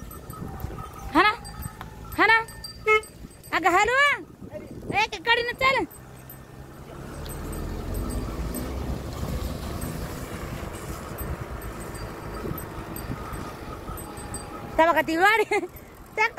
ना हा ना. अगं हॅलो एक गाडीनं चाल. बघा ती गाडी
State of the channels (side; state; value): both; identical; correlation 1.00